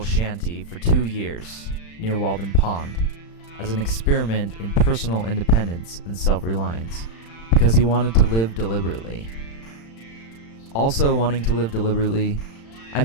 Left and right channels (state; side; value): late; right; 35 ms